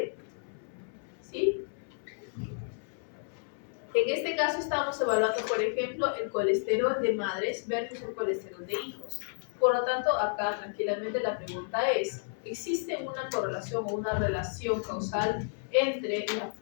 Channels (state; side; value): silent; right; 57 dB below the other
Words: ¿Sí? En este caso estamos evaluando, por ejemplo, el colesterol de madres versus el colesterol de hijos. Por lo tanto, acá tranquilamente la pregunta es, ¿existe una correlación o una relación causal entre